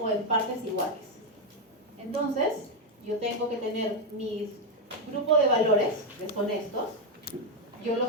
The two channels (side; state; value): both; normal; correlation 0.04